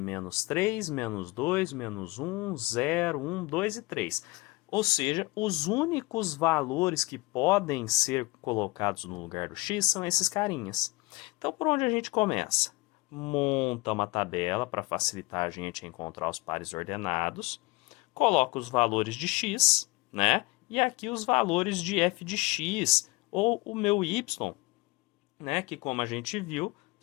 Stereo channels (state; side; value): quieter; right; 22.6 dB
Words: 3, menos 2, menos 1, 0, 1, 2 e 3. Ou seja, os únicos valores que podem ser colocados no lugar do x são esses carinhas. Então, por onde a gente começa? Monta uma tabela para facilitar a gente encontrar os pares ordenados. Coloca os valores de x, né? E aqui os valores de f de x, ou o meu y, né? Que como a gente viu,